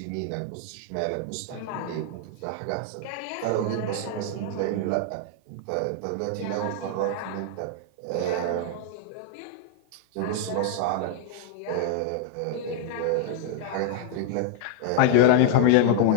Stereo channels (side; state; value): both; different; correlation -0.01